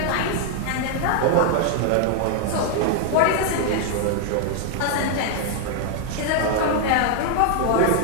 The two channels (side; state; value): both; different; correlation 0.00